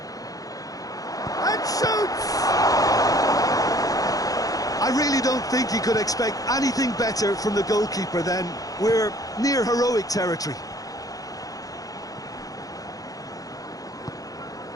And shoots! I really don't think you could expect anything better from the goalkeeper then. We're near heroic territory.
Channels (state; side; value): late; right; 0.17 ms